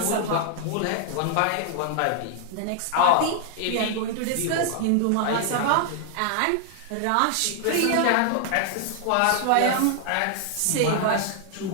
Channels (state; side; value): different; both; correlation 0.00